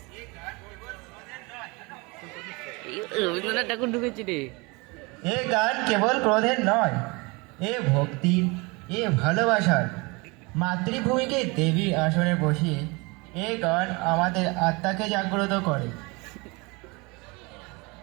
রবীন্দ্রনাথ ঠাকুর ঢুকেছি রে। এ গান কেবল ক্রোধের নয়, এ ভক্তির, এ ভালোবাসার। মাতৃভূমিকে দেবীর আসনে বসিয়ে এ গান আমাদের আত্মাকে জাগ্রত করে।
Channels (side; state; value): left; quieter; 26.9 dB